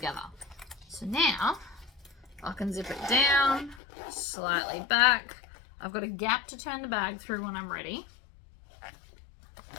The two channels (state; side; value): drops out; right; at 3.8 s